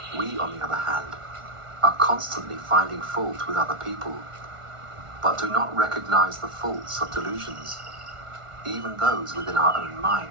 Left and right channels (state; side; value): late; left; 1.4 ms